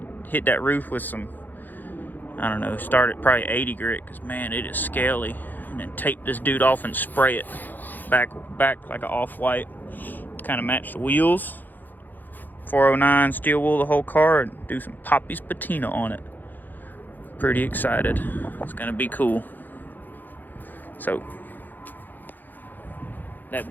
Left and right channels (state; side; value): late; right; 0.087 ms